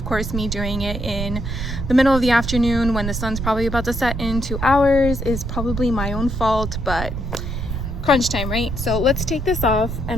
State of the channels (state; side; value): noise; right; rumble, 4 dB below the sound